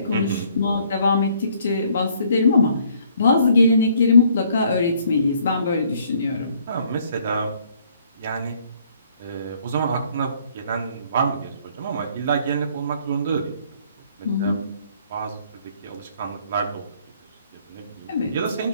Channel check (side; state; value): both; inverted; correlation -0.63